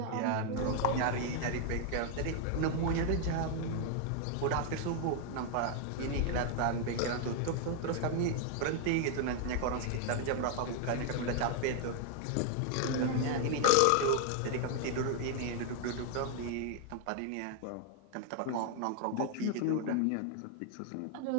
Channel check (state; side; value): different; both; correlation 0.00